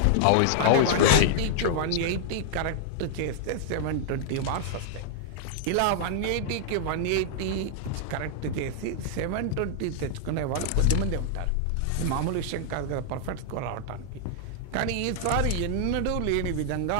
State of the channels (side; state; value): both; different; correlation -0.01